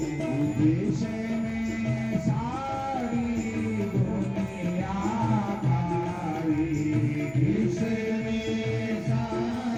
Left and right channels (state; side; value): noise; left; hum, 24 dB below the sound